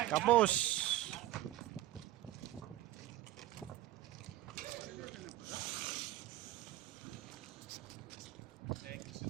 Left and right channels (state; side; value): quieter; left; 15.0 dB